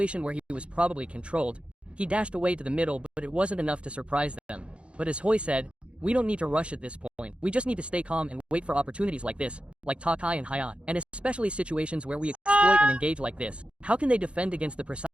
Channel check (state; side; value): late; left; 0.059 ms